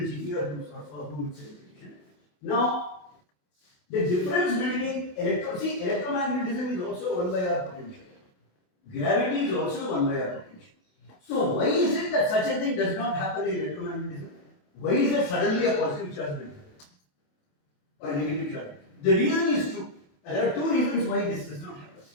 GTR who it's repetition. Now, the difference between electromagnetism is also 1 by r potential. Gravity is also 1 by r potential. So, why is it that such a thing does not happen in electromagnetism? Why is there suddenly a positive charge built or a negative charge? The reason is two. There are two reasons why this does not happen.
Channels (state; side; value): late; right; 28 ms